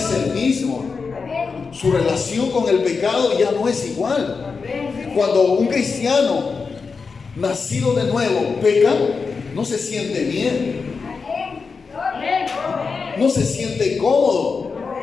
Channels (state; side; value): quieter; right; 4.9 dB